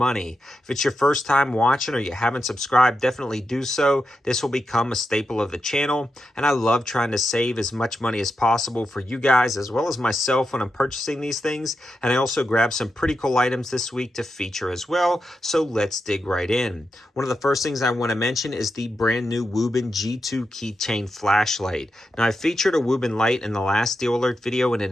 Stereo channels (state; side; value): normal; both; correlation 0.87